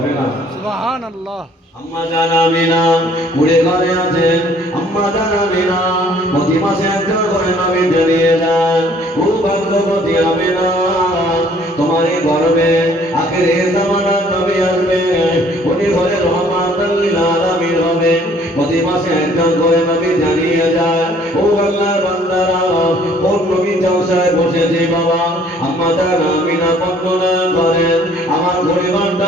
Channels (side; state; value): both; normal; correlation 0.58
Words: না? সুবহানাল্লাহ। আম্মা জান আমিনা কুড়ে ঘরে আছেন। আম্মা জান আমিনা প্রতি মাসে একটা করে নবী জানিয়ে যান, ও ভাগ্যবতী আমিনা তোমার এই গর্ভে আখিরে জামানা নবী আসবে, উনি ঘরে রহমাতুল লিল আলামিন হবে। প্রতি মাসে একজন করে নবী জানিয়ে যায়, ও আল্লাহর বান্দারা কোন নবী জলসায় বসেছে বাবা। আম্মা জান আমিনা বর্ণনা করেন, আমার পরিবারটা